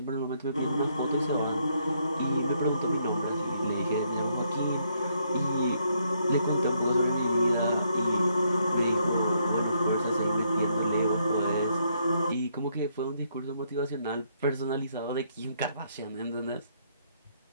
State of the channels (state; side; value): inverted; both; correlation -0.73